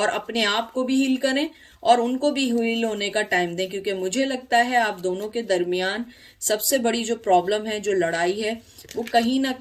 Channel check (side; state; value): both; identical; correlation 1.00